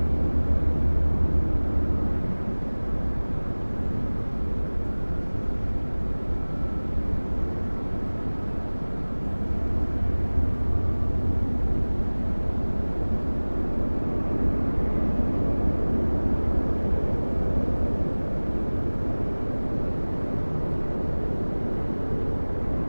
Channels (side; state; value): both; inverted; correlation -1.00